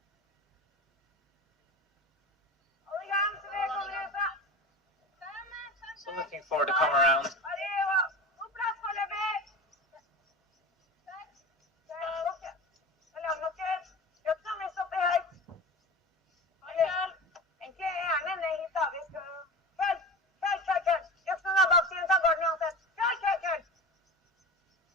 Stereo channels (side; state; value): both; normal; correlation 0.30